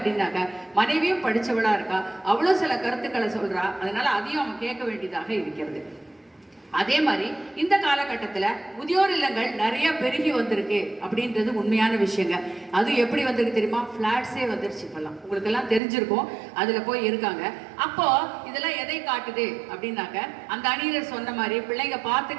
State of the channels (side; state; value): left; drops out; at 15.8 s